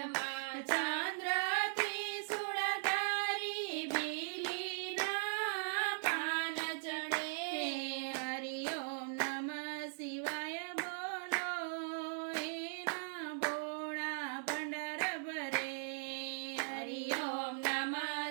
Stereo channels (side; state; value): left; silent; digital silence